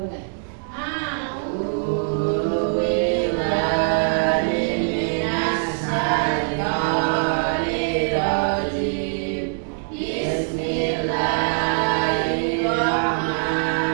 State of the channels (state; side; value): silent; left; digital silence